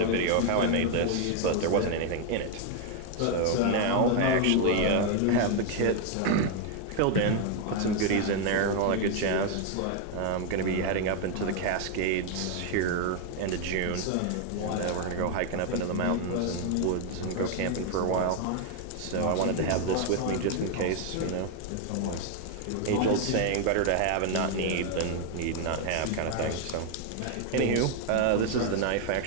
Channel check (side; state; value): both; different; correlation 0.00